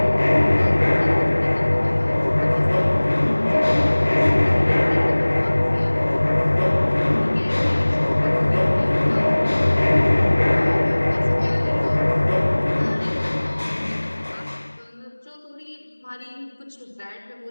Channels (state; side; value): inverted; both; correlation -1.00